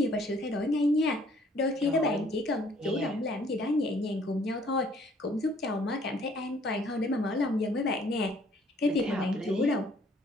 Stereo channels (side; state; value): both; normal; correlation 0.61